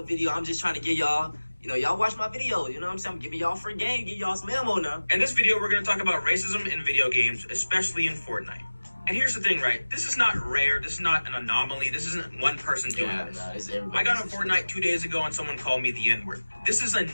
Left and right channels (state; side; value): inverted; both; correlation -1.00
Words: video. I'm just trying to give y'all. Y'all watch my video. You know what I'm saying? I'm giving y'all free game, give y'all some ammo now. In this video, we're going to talk about racism in video games, especially in Fortnite. And here's the thing, right? This is not rare. This is not an anomaly. This isn't one person doing this. I got on Fortnite 2 days ago and someone called me the N-word. This is a